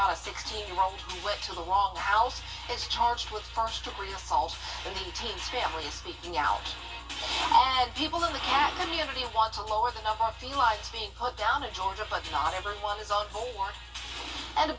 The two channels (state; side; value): identical; both; correlation 1.00